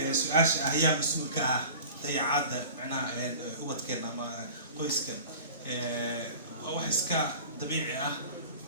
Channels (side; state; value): both; inverted; correlation -0.41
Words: su-aasha ah yaa mas-uulka ah dayacaadda macnaha ubadkeena ama qoyska waa wax iska dabiici ah